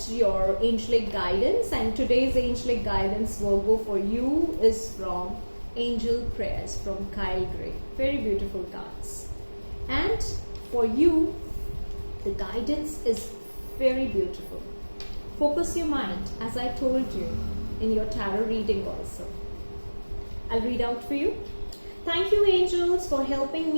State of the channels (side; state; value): both; inverted; correlation -1.00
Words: your angelic guidance, and today's angelic guidance, Virgo, for you is from Angel Prayers from Kyle Gray. Very beautiful cards. And for you, the guidance is very beautiful. Focus your mind, as I told you in your tarot reading also. I'll read out for you. Thank you, angels, for helping